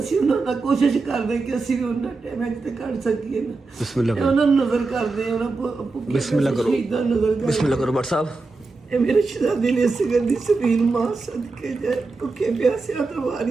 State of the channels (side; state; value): left; quieter; 3.8 dB